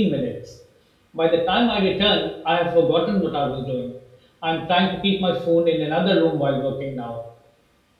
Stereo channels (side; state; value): both; identical; correlation 1.00